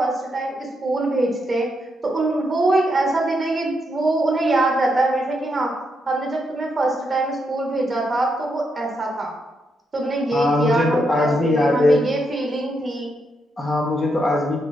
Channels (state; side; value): normal; both; correlation 0.81